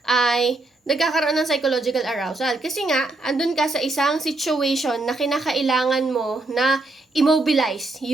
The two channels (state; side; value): quieter; left; 3.0 dB